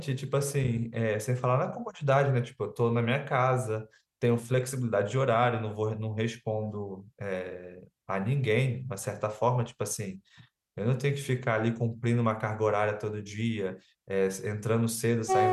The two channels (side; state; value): both; identical; correlation 1.00